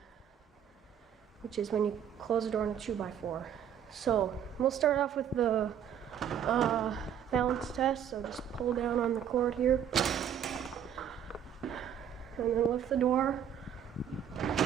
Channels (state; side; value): quieter; left; 8.9 dB